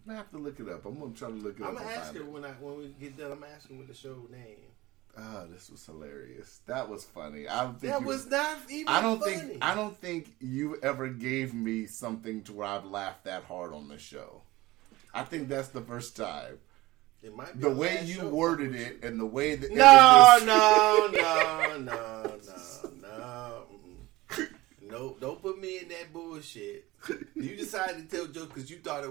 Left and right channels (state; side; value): quieter; left; 19.1 dB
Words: going to have to look it up. I'm going to try to look it up. I'm going to ask her when we get done. I'm going to ask her what the show name. Oh, this was hilarious. That was funny. I don't think that was not even funny. I don't think you ever gave me something to where I've laughed that hard on the show. I think that's the first time. It might be the way you worded it and the way that No, don't put me in that bullshit. You decided to tell jokes because you thought